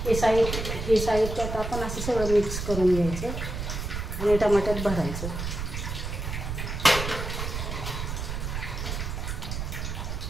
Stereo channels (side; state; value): right; noise; rumble, 4 dB below the sound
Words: हे साहित्य आता आपण असं सगळं मिक्स करून घ्यायचं आणि टमाट्यात भरायचं.